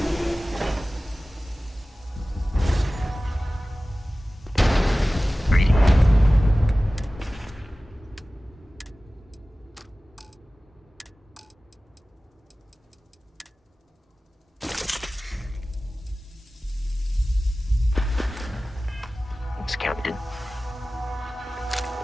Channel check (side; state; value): both; normal; correlation 0.97